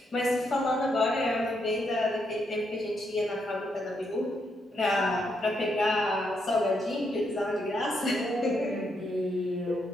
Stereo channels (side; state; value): both; normal; correlation 0.79